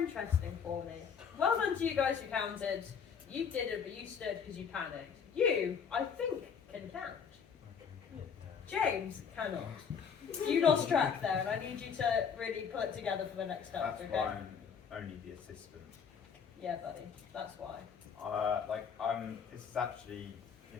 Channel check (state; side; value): quieter; right; 6.8 dB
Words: for me. Well done to you guys who counted. You did it, but you stood because you panicked. You, I think, can count. James cannot. You lost track there, and I need you to really pull it together for the next step, That's okay? why I'm only the assistant. Yeah, buddy. That's why. This is actually,